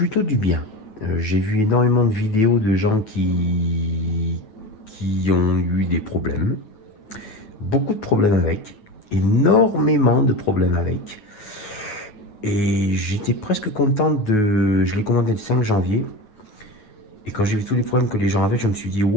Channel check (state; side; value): late; right; 9.5 ms